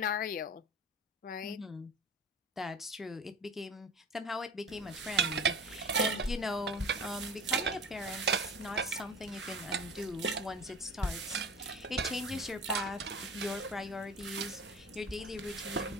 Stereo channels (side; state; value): both; normal; correlation 0.37